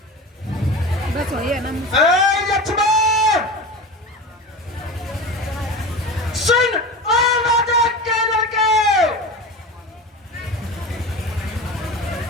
बस हो ये ना लक्ष्मण सुन आवाज़ के लड़के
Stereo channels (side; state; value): both; normal; correlation 0.30